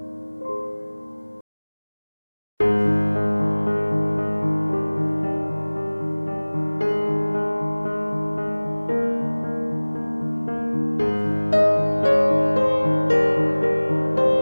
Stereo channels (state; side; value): inverted; both; correlation -1.00